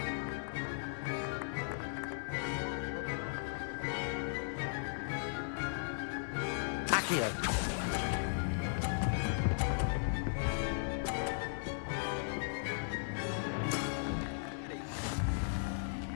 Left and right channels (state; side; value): silent; right; digital silence